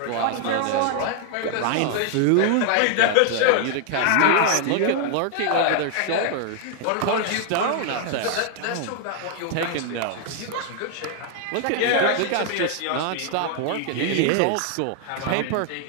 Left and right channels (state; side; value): different; both; correlation 0.00